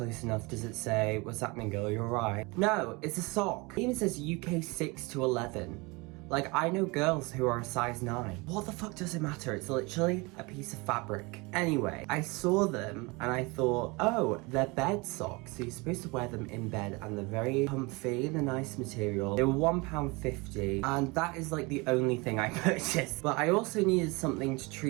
enough, does it say, "What's happening, girl, you're right"? No, it's a sock. It even says UK 6 to 11. Like, I know girls who are a size 9. What the fuck does it matter? It's literally a piece of fabric. Anyway, I saw them and I thought, oh, they're bed socks. So you're supposed to wear them in bed and they're very comfy and a nice material. They were £1.50 and that is like the only thing I purchased. But I also needed something to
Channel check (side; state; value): left; quieter; 26.1 dB